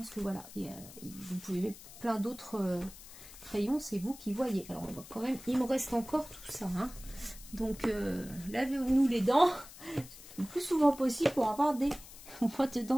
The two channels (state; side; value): noise; left; hiss, 17 dB below the sound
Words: que voilà, vous pouvez mettre plein d'autres crayons, c'est vous qui voyez. Alors on va quand même, il me reste encore tout ça, hein. Donc lavez-nous les dents le plus souvent possible pour avoir des boîtes de